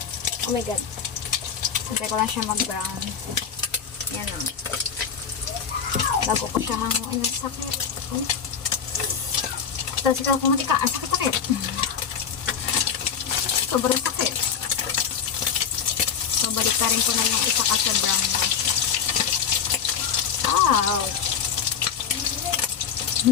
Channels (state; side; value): quieter; right; 7.3 dB